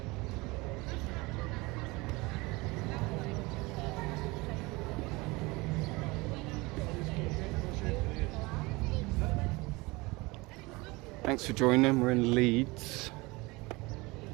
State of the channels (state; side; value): quieter; left; 23.7 dB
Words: Thanks for joining. We're in Leeds.